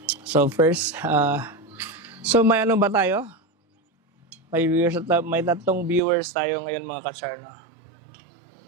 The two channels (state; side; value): drops out; left; at 6.0 s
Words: So, first, so may ano ba tayo? May viewers, may tatlong viewers tayo ngayon mga katsarno.